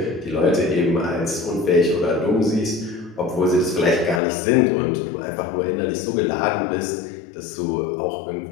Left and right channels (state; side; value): drops out; right; at 4.2 s